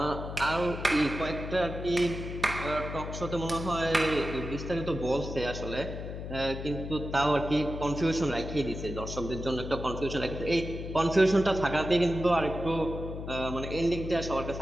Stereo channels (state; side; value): noise; left; hum, 7 dB below the sound